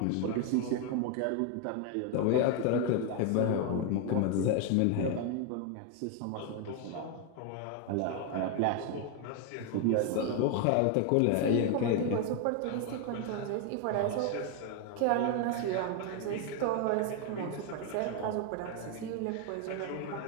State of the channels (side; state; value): both; different; correlation 0.01